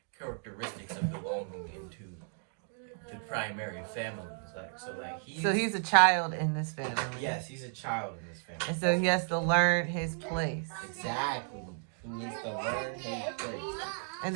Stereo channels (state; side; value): silent; left; 55 dB below the other